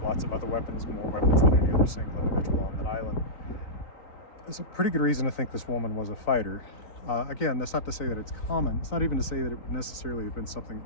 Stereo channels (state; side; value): late; right; 4.0 ms